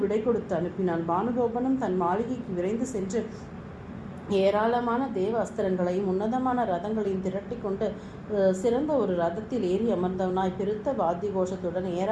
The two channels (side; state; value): both; identical; correlation 1.00